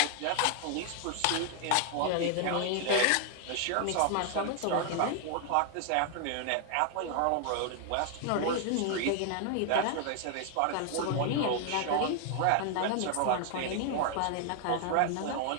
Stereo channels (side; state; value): both; different; correlation 0.00